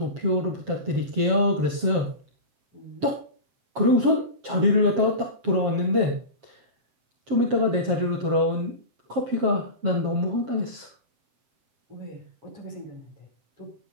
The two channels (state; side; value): late; left; 7.4 ms